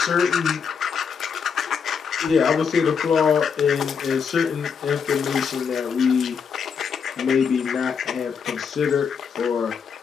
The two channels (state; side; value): quieter; right; 6.4 dB